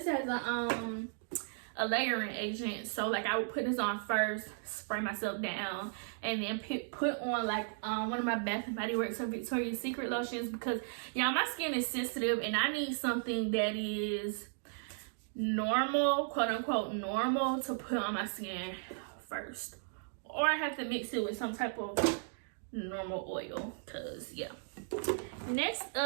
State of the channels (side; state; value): left; silent; digital silence